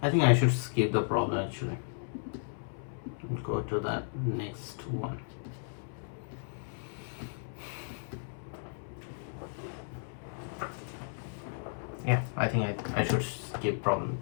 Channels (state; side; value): silent; right; 55 dB below the other